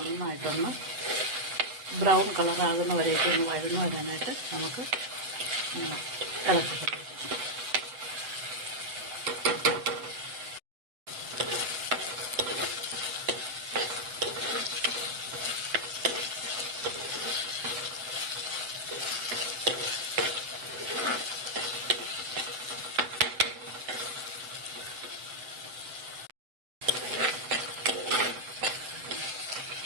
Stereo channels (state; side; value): late; left; 8.0 ms